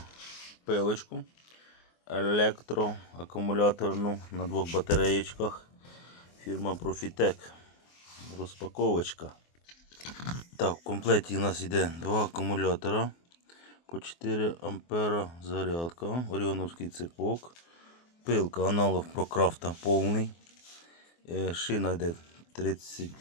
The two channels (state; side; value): late; right; 24 ms